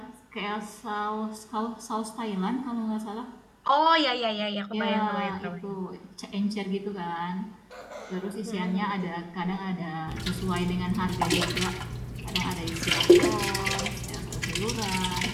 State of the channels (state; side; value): identical; both; correlation 1.00